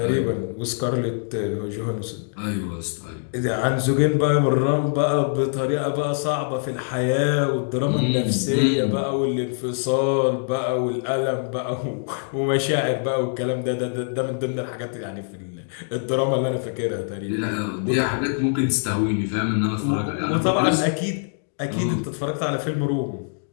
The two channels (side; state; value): right; silent; digital silence